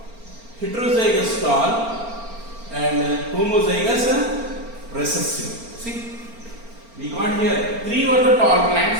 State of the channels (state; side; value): late; left; 4.4 ms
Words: heterozygous tall, and homozygous recessive. See? We got here 3 were the tall